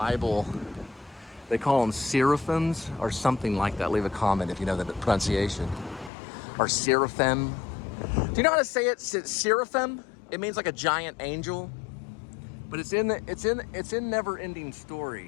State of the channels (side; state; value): right; drops out; at 6.1 s